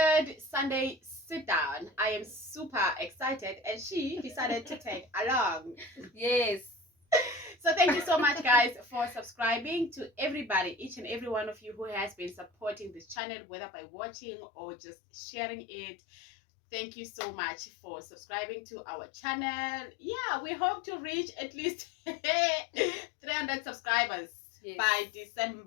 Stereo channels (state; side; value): drops out; right; at 13.2 s